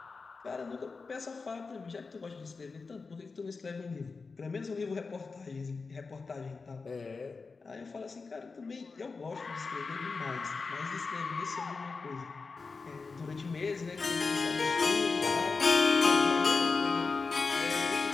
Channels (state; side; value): quieter; right; 4.4 dB